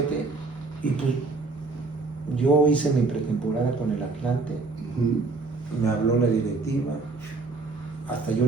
y pues yo hice mi pretemporada con el Atlante. Me habló la directiva, hasta yo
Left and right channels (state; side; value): quieter; left; 3.8 dB